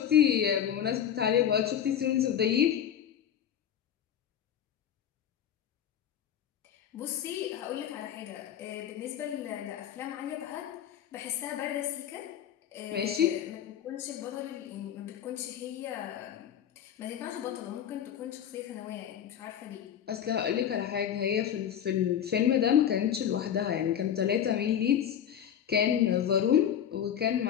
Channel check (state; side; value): quieter; right; 9.5 dB